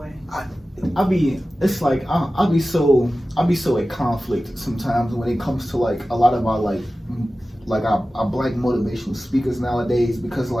I'll be so at conflict sometimes when it comes to like a lot of our like our black motivational speakers nowadays, because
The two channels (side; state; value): both; normal; correlation 0.95